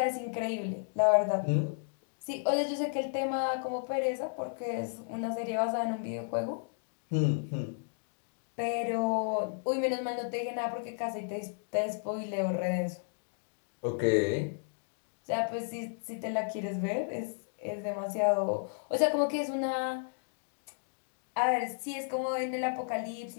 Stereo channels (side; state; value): right; silent; digital silence